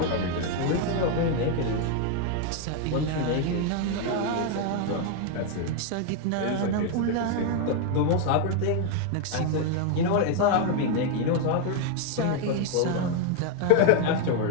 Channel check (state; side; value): different; both; correlation 0.01